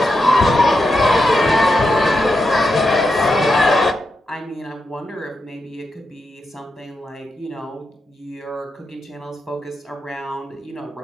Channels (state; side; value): normal; both; correlation 0.86